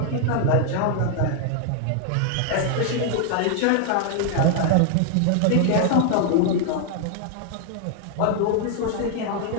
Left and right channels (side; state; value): both; different; correlation 0.00